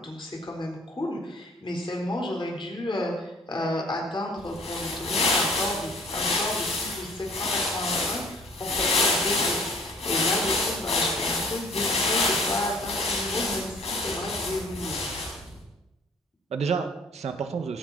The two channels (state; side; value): normal; both; correlation 0.53